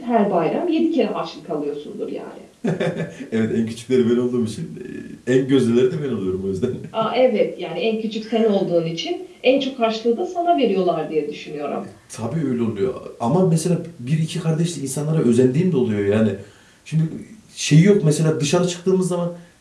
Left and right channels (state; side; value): identical; both; correlation 1.00